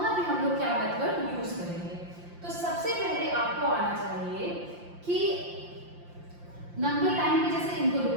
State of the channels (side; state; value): left; late; 5.7 ms